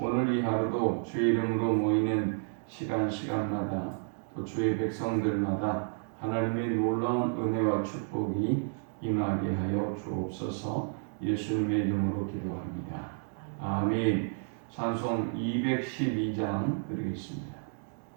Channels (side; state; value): left; silent; 57 dB below the other